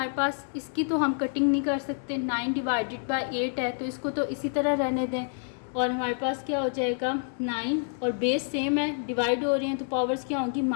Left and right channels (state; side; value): silent; right; 59 dB below the other